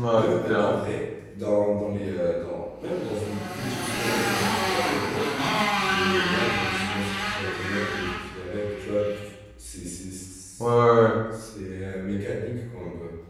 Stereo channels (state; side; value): identical; both; correlation 1.00